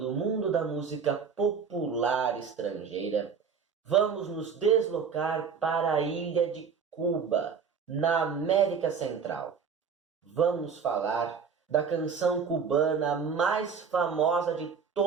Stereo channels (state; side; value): quieter; left; 6.2 dB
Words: mundo da música popular estrangeira, vamos nos deslocar para a ilha de Cuba, na América Central. Vamos falar da canção cubana mais famosa de